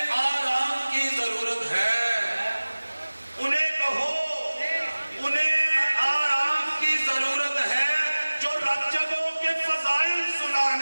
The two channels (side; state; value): both; inverted; correlation -1.00